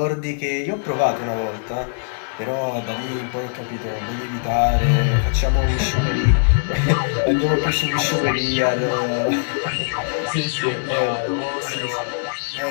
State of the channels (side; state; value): right; silent; digital silence